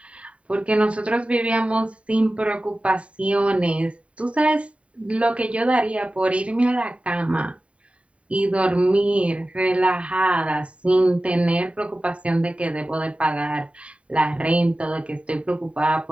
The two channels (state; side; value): late; left; 0.063 ms